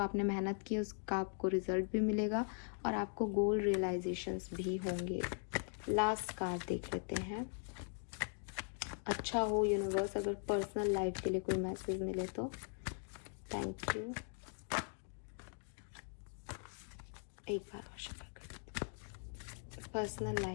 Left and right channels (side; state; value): right; silent; 51 dB below the other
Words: मेहनत की उसका आपको रिजल्ट भी मिलेगा, और आपको गोल रियलाइजेशंस भी होंगे। लास्ट कार्ड देख लेते हैं। अच्छा हो यूनिवर्स, अगर पर्सनल लाइफ के लिए कोई मैसेज मिले तो थैंक यू। एक बार और शेयर कर देते हैं। पर्सनल